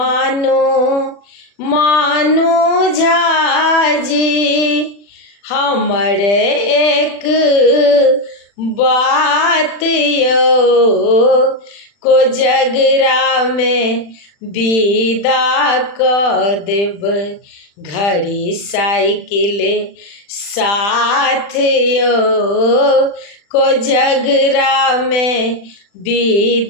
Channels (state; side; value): late; right; 40 ms